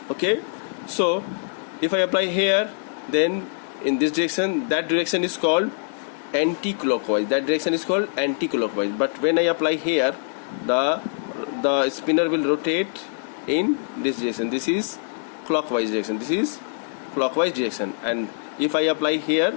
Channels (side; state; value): right; silent; digital silence